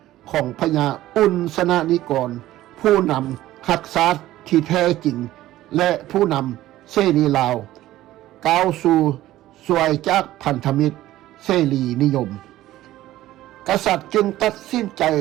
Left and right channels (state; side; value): quieter; left; 15.0 dB